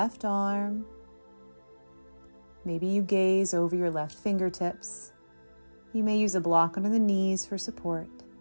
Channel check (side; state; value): both; inverted; correlation -1.00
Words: arm Maybe you gaze over your left fingertips. You may use a block under the knees for support.